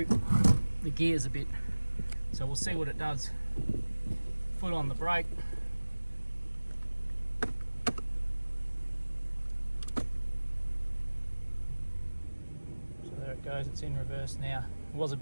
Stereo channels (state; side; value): inverted; both; correlation -1.00